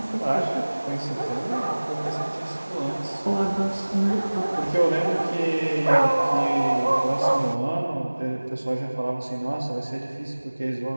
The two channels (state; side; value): inverted; both; correlation -1.00